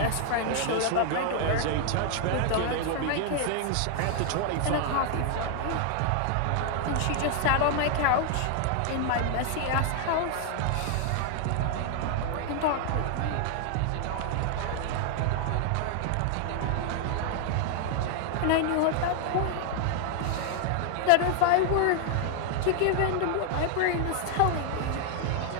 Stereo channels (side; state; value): both; different; correlation 0.00